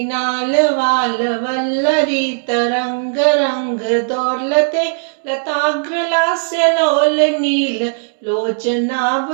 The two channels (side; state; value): left; silent; digital silence